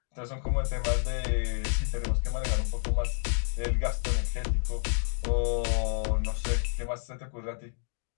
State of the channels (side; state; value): right; silent; digital silence